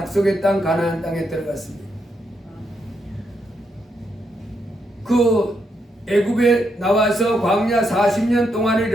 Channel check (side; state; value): both; normal; correlation 0.80